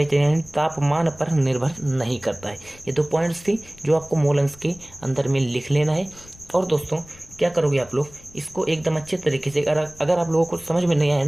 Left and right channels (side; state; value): left; noise; rumble, 22 dB below the sound